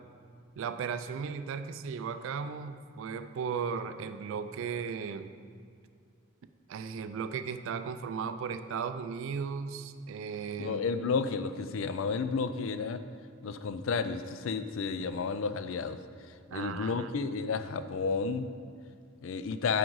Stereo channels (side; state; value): both; normal; correlation 0.00